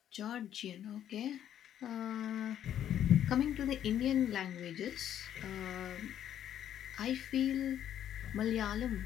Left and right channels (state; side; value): quieter; right; 10.4 dB